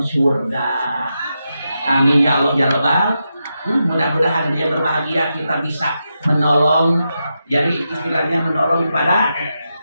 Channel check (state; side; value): inverted; both; correlation -0.87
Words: surga. Amin ya Allah ya Rabbal. Mudah-mudahan dia berbahagia, kita bisa menolong. Jadi istilahnya menolong kepada